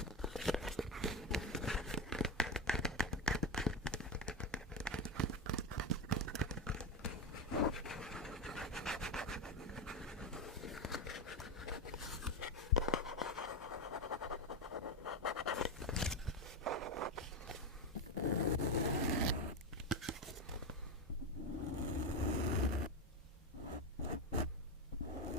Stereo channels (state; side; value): normal; both; correlation 0.12